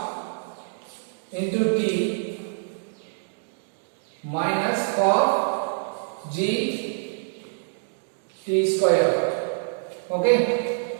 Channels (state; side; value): silent; left; digital silence